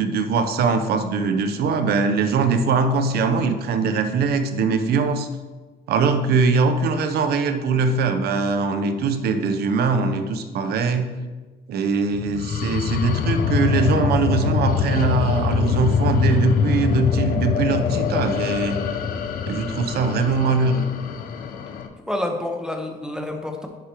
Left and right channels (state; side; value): normal; both; correlation 0.38